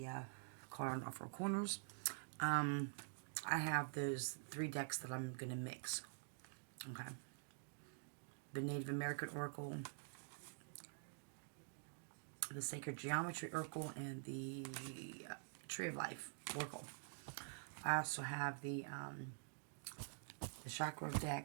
caught on all four corners. I have those 3 decks that I'm going to mix. Okay. The Native American Oracle, the Sacred Geometry Oracle, and the Tree of Life Oracle. I also have the Chakra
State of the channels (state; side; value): silent; left; digital silence